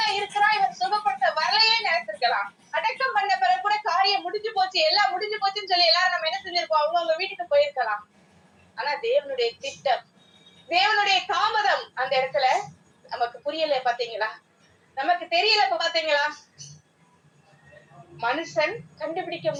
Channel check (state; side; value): identical; both; correlation 1.00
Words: இருக்கிறான், இவன் சுகப்படுத்த வரலையே நினைச்சிருக்கலாம். அடக்கம் பண்ண பிறகு கூட காரியம் முடிஞ்சு போச்சு, எல்லாம் முடிஞ்சு போச்சுன்னு சொல்லி எல்லாரும் நம்ம என்ன செஞ்சிருப்போம்? அவங்க வீட்டுக்கு போயிருக்கலாம். ஆனா தேவனுடைய திட்டம், தேவனுடைய தாமதம் அந்த இடத்துல நமக்கு புரியல. பாத்தீங்களா? நமக்கு தெரியல. பாத்தீங்களா? மனுஷன் கண்டுபிடிக்க